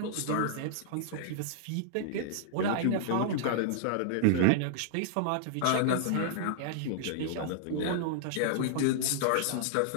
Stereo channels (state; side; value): different; both; correlation -0.01